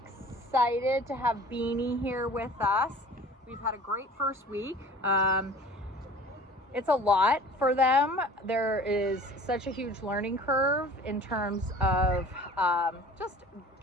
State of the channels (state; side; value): normal; both; correlation 0.45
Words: to have Beanie here with us. We've had a great first week. It's a lot for them. There is such a huge learning curve in terms of just